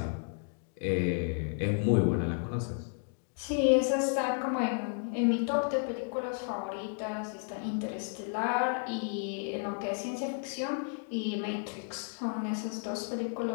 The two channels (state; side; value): silent; right; 56 dB below the other